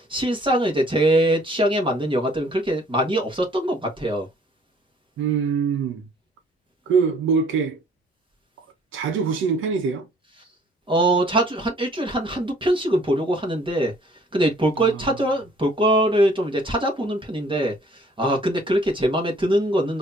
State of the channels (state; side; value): normal; both; correlation 0.57